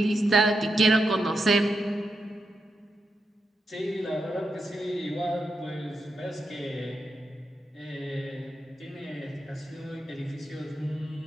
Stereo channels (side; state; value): both; normal; correlation 0.85